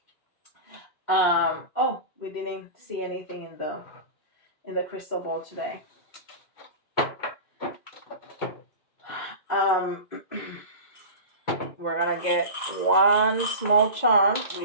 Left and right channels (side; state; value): right; late; 2.0 ms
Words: Oh, we didn't see anything in the crystal ball today. We're gonna get one small charm. We